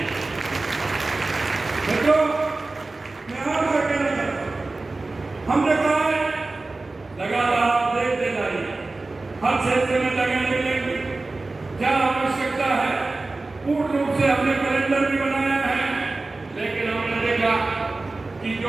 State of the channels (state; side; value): quieter; left; 3.3 dB